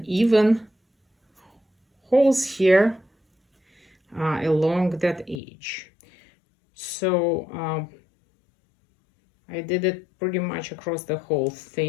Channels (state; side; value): drops out; right; at 5.4 s